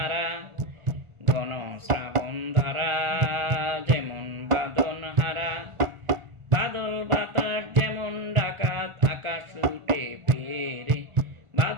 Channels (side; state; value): left; late; 1.4 ms